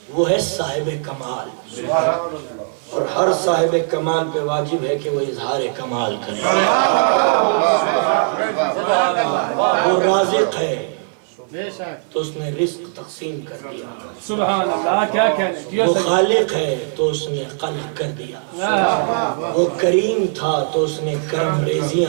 وہ ہے صاحب کمال اور ہر صاحب کمال پہ واجب ہے کہ وہ اظہار کمال کرے. وہ رازق ہے تو اس نے رزق تقسیم کر دیا، سبحان اللہ، کیا کہنے. وہ خالق ہے تو اس نے خلق کر دیا، وہ کریم تھا تو اس نے کرم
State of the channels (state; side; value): silent; left; 66 dB below the other